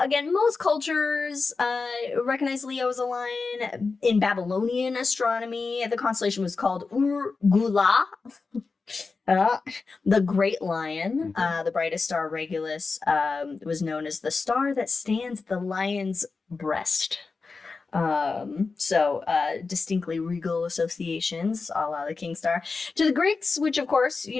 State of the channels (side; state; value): right; quieter; 4.3 dB